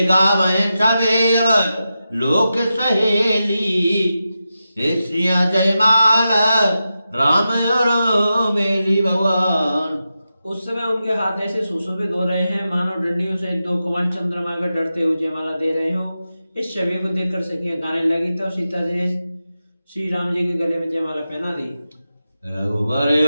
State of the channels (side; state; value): both; inverted; correlation -0.90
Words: गावे छवेव लोक सहेली, हे श्रिया जयमाला राम और मेली भगवान। उस समय उनके हाथ ऐसे सुशोभित हो रहे हैं मानो डंडियों से दो कमल चंद्रमा का डरते हुए जयमाला दे रहे हो। इस छवि को देखकर सखियां गाने लगी, तब सीता जी ने श्री राम जी के गले में जयमाला पहना दी। रघुवर